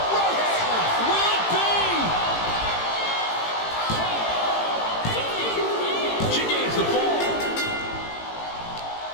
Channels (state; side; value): late; right; 18 ms